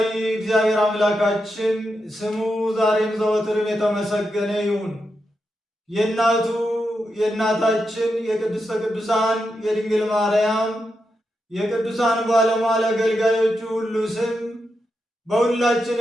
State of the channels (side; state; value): both; normal; correlation 0.86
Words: እግዚአብሔር አምላካችን ስሙ ዛሬም ዘወትርም የተመሰገነ ይሁን። የእናቱ የእናታችን የቅድስተ ቅዱሳን የድንግል ማርያም የቅዱሳን ባለሟል አገልጋዮቹ ሁሉ ስም